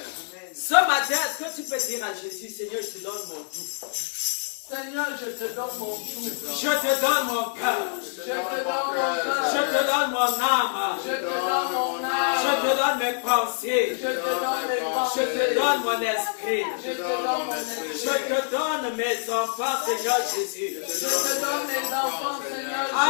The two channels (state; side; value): silent; right; 61 dB below the other